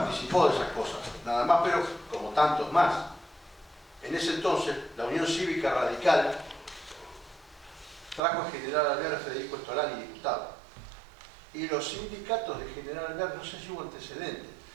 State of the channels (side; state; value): left; drops out; at 8.2 s